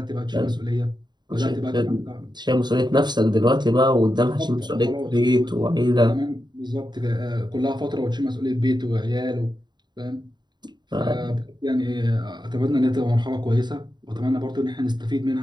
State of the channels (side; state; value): left; late; 0.21 ms